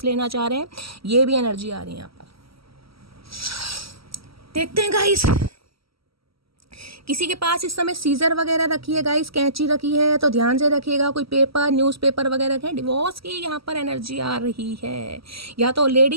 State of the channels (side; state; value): left; late; 0.75 ms